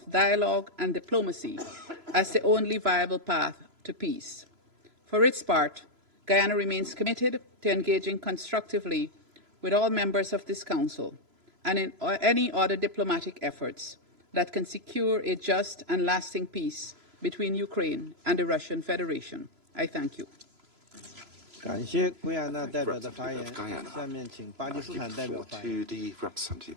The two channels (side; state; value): left; late; 3.0 ms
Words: dialogue and diplomacy as the only viable path to peace. For its part, Guyana remains committed to engaging constructively with all members of this Council and in any other diplomatic efforts that can secure a just and lasting peace between Ukraine and the Russian Federation. I thank you. I thank the representative of Guyana. I give the floor to the representative